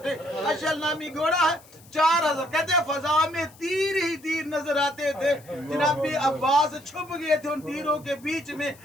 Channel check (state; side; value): noise; left; hiss, 25 dB below the sound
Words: थे, अशल नामी घोड़ा है। 4000 कहते हैं फजा में तीर ही तीर नजर आते थे। जनाब अब्बास छुप गए थे उन तीरों के बीच में,